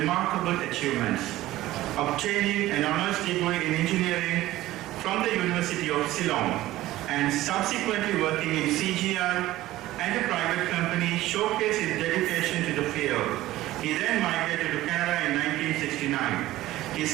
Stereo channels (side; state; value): left; quieter; 16.0 dB